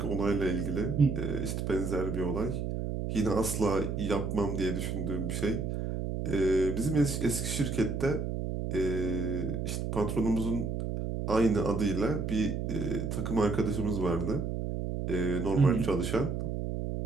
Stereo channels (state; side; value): noise; right; hum, 2 dB below the sound